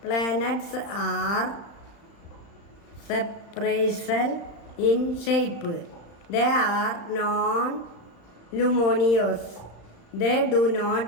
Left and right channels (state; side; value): late; right; 35 ms